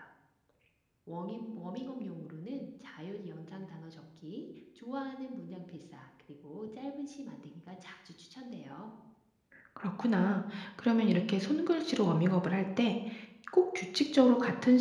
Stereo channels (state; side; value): identical; both; correlation 1.00